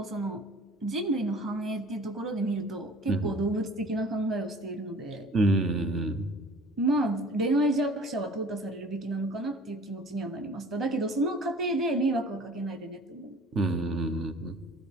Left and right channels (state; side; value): normal; both; correlation 0.47